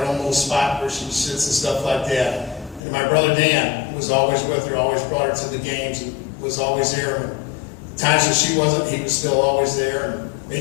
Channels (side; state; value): right; drops out; at 2.8 s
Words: own little spot where she sits and stuff like that. And my brother Dan was always with her, always brought her to the games and was always there. And times that she wasn't, he was still always there. And